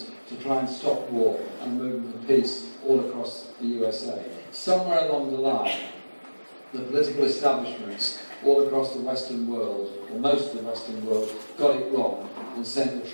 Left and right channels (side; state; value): both; inverted; correlation -1.00